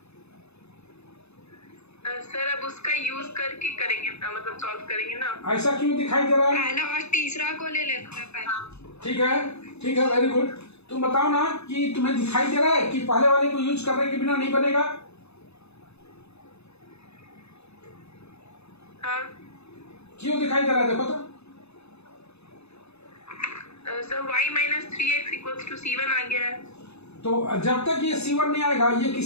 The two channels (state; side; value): late; right; 0.80 ms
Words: सर अब उसका यूज करके करेंगे, मतलब सॉल्व करेंगे ना। ऐसा क्यों दिखाई दे रहा है? पहला और तीसरा को ले लेते हैं पहले। ठीक है, वेरी गुड। तुम बताओ ना कि तुम्हें दिखाई दे रहा है कि पहले वाले को यूज करने के बिना नहीं बनेगा? हाँ। क्यों दिखाई दे रहा है? देखो तो। Sir y minus 3x equals to C1 आ गया है। तो जब तक ये C1 नहीं आएगा ये